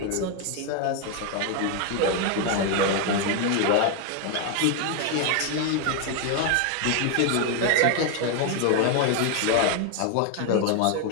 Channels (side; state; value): both; different; correlation 0.01